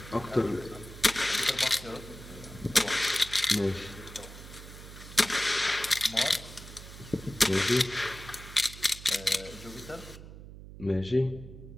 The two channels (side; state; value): right; noise; hum, 15 dB below the sound